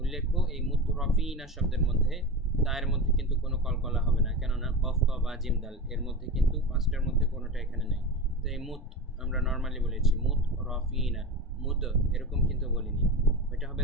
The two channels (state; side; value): normal; both; correlation 0.25